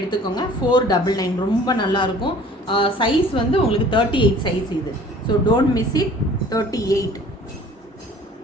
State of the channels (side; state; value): both; normal; correlation 0.49